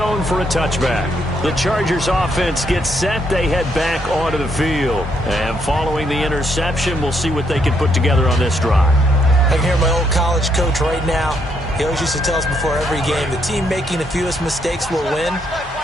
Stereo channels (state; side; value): normal; both; correlation 0.74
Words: for a touchback. The Chargers offense gets set. They head back onto the field. And following the interception, we'll see what they can put together on this drive. I can hear my old college coach right now. He always used to tell us before every game, the team making the fewest mistakes will win.